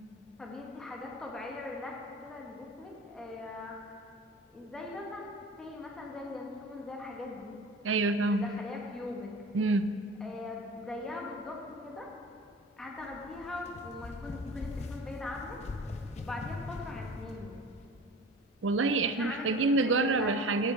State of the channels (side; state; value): both; normal; correlation 0.38